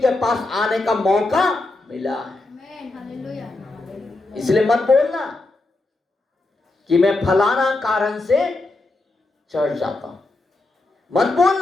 पास आने का मौका मिला है। इसलिए मत बोलना कि मैं फलाना कारण से चर्च जाता हूं, मत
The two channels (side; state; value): right; quieter; 3.0 dB